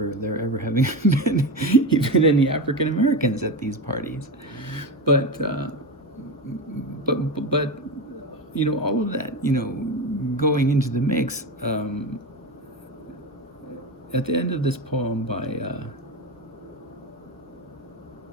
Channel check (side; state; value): both; normal; correlation 0.20